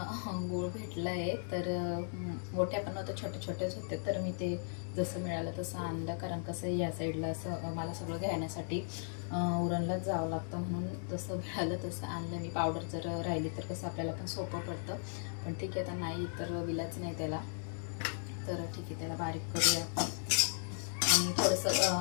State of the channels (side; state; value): right; silent; digital silence